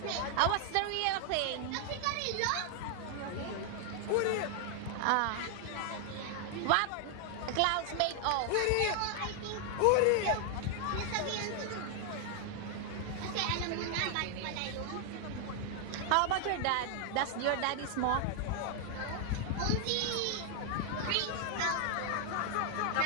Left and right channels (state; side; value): different; both; correlation 0.00